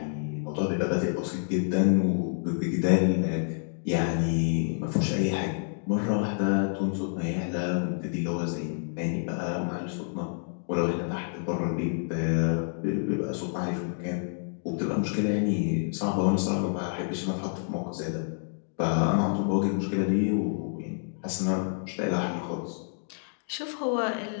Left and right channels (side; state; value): right; silent; digital silence